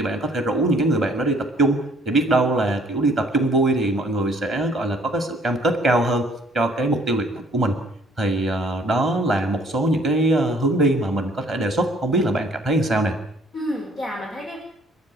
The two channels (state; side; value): normal; both; correlation 0.60